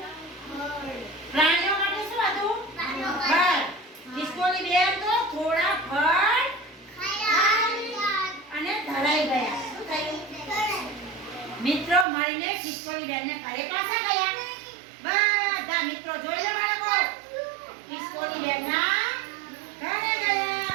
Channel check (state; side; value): drops out; left; at 12.1 s